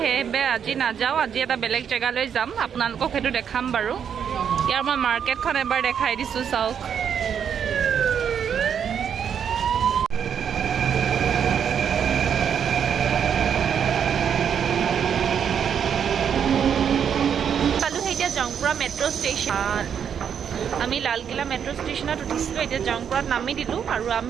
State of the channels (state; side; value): quieter; left; 8.0 dB